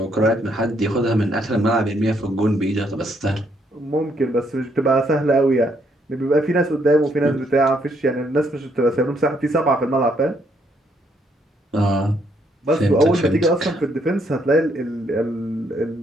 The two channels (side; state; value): both; normal; correlation 0.71